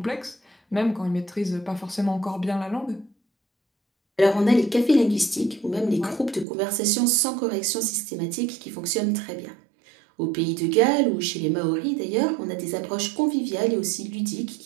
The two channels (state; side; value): drops out; left; at 6.5 s